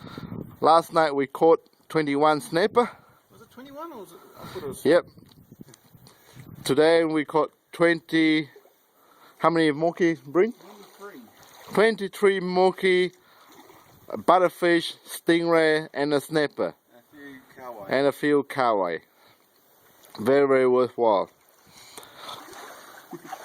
Last night we caught 21 snapper. Was it 21 or was it? I thought it was. Yep. Today we caught 20. How many moki, Breen? 23 moki, a butterfish, stingray, and a snapper. And a few kawai. Very, very worthwhile.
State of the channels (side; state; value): both; identical; correlation 1.00